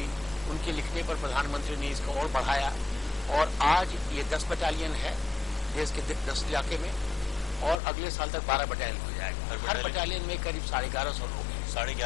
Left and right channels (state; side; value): drops out; right; at 7.8 s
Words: उनके लिखने पर प्रधानमंत्री ने इसको और बढ़ाया और आज ये 10 बटालियन है देश के 10 इलाके में और अगले साल तक 12 बटालियन हो जाएगा। हर बटालियन में करीब 1150 लोग हैं।